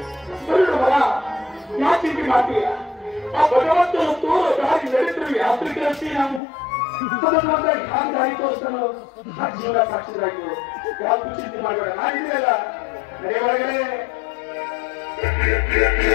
ಬರಡು ಮರ. ಯಾಕೆ ಮಾಡ್ತೀಯ? ಆ ಭಗವಂತನ ತೋರ ದಾರಿ ನಡೆದ್ರು ಯಾತ್ರಿಕರಷ್ಟೇ ನಾವು. ಅದನ್ನ ಹ್ಯಾಂಗ ದಾರಿ ತೋರಿಸ್ತಾನೋ ಆ ಜೀವನ ಸಾಕ್ಷಿರಾಗಿ ಯಾವ್ದು ಚಿಂತೆ ಮಾಡಬೇಡ. ನಾನಿದೆಯಲ್ಲ ನಡೆ ಒಳಗಡೆ.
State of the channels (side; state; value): right; drops out; at 6.4 s